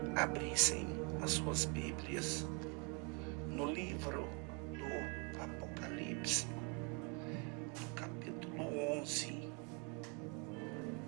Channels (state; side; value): quieter; left; 33.9 dB